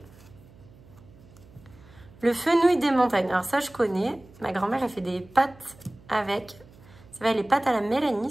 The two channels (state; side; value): noise; right; hum, 24 dB below the sound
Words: Le fenouil des montagnes. Alors ça, je connais. Ma grand-mère, elle fait des pâtes avec. Ça va, les pâtes à la